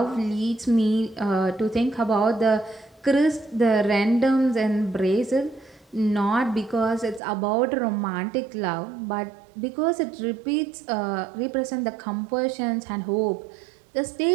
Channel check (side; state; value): left; drops out; at 7.2 s